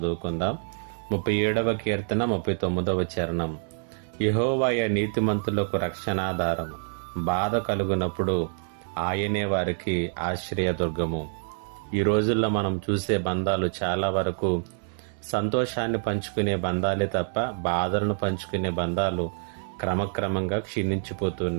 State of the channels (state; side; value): silent; left; digital silence